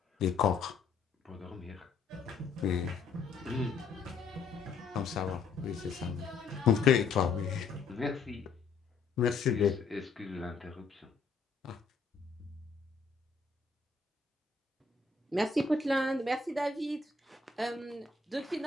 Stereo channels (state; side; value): quieter; right; 4.8 dB